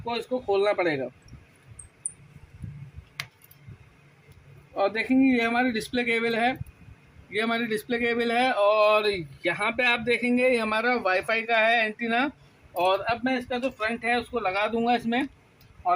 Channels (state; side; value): identical; both; correlation 1.00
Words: इसको खोलना पड़ेगा। और देखेंगे ये हमारी डिस्प्ले केबल है, ये हमारी डिस्प्ले केबल है। और यहाँ पे आप देखेंगे ये हमारा वाईफाई का है एंटीना। और अब मैं इसका जो फ्रंट है उसको लगा दूंगा इसमें।